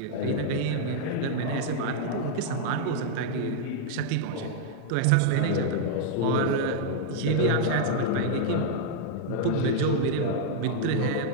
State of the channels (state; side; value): different; both; correlation -0.01